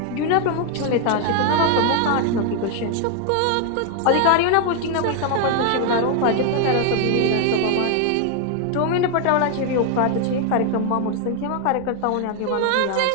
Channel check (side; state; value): both; different; correlation 0.00